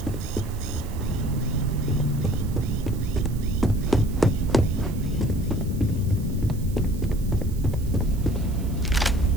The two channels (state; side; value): noise; right; hiss, 20 dB below the sound